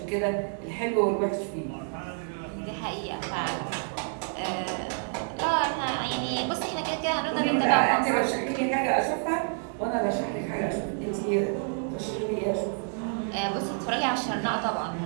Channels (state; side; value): silent; left; 56 dB below the other